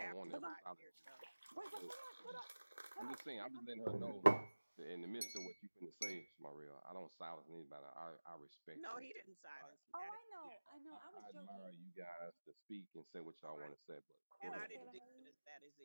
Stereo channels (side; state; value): both; inverted; correlation -1.00